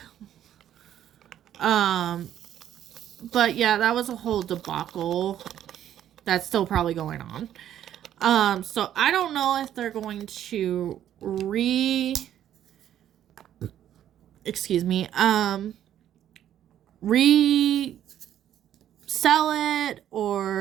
But yeah, that was a whole debacle that's still probably going on. So I don't know if they're going to resell it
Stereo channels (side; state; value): left; quieter; 11.0 dB